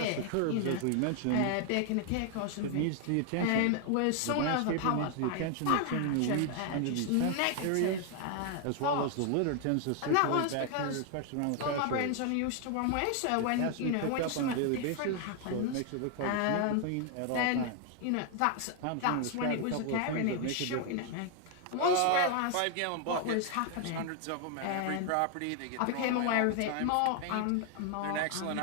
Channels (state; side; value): different; both; correlation 0.00